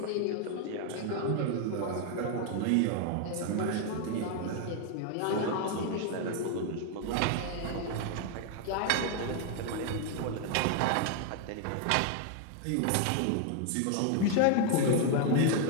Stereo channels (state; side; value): different; both; correlation 0.00